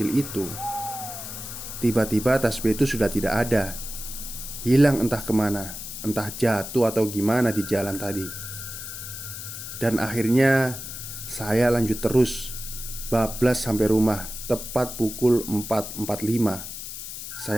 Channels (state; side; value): noise; left; hiss, 9 dB below the sound